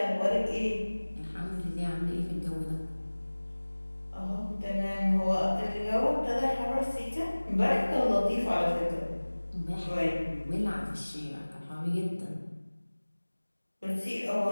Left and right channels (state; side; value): inverted; both; correlation -1.00